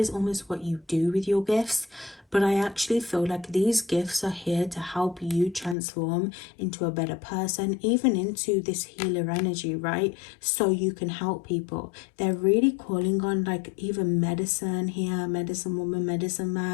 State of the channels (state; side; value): drops out; right; at 5.8 s